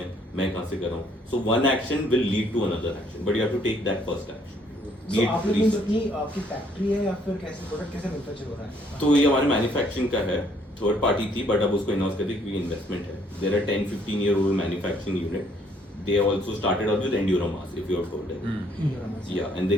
मैं कहाँ से कर रहा हूँ. So one action will lead to another action, but you have to take that first action. Be So it आप लोग research. अपनी आपकी फैक्ट्री है या फिर कैसे प्रोडक्ट कैसे मैन्युफैक्चर हो रहा है? तो ये हमारे मैन्युफैक्चरिंग का है, थर्ड पार्टी थी बट अब उसको इनहाउस करके क्योंकि इन्वेस्टमेंट है. There are 10-15 year old manufacturing unit. They also started out with Enduramass, if you have heard it. Yeah, and they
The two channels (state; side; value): normal; both; correlation 0.65